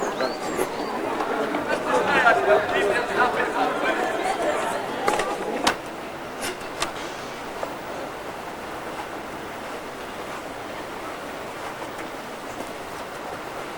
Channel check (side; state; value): both; identical; correlation 1.00